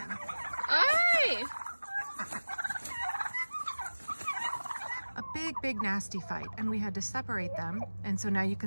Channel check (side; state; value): both; inverted; correlation -1.00